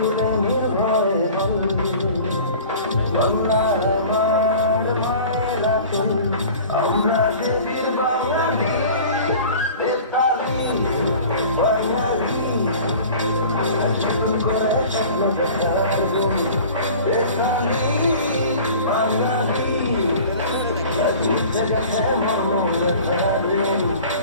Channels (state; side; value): inverted; both; correlation -0.43